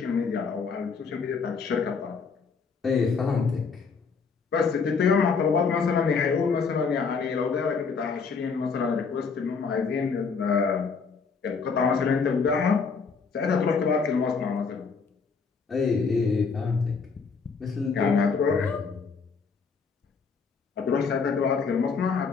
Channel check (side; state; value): right; quieter; 5.2 dB